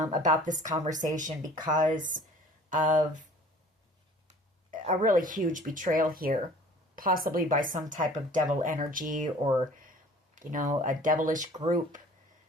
this conversation because of a really huge betrayal here. Possibly by some type of devil energy or, a devilish group.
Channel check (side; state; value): both; normal; correlation 0.48